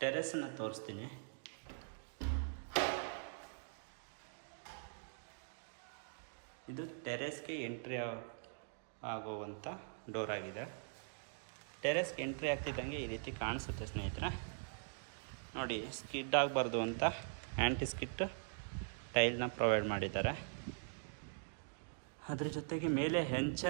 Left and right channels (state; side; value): silent; left; digital silence